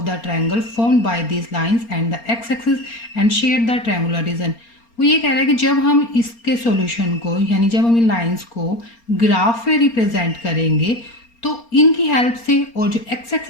the triangle formed by these lines and the x axis and shade the triangular region. वो ये कह रहा है कि जब हम इसके सॉल्यूशन को, यानी जब हम इन लाइंस को ग्राफ में रिप्रेजेंट करेंगे तो इनकी हेल्प से और जो एक्स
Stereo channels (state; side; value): late; right; 4.3 ms